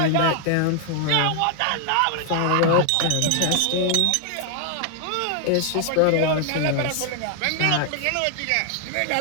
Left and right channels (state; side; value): different; both; correlation 0.00